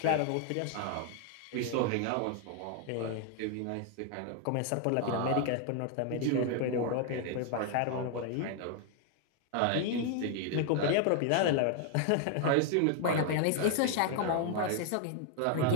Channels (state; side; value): different; both; correlation 0.00